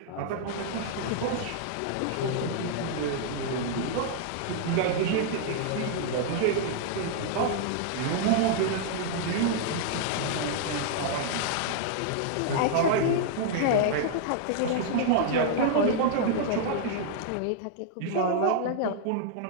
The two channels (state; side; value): different; both; correlation -0.01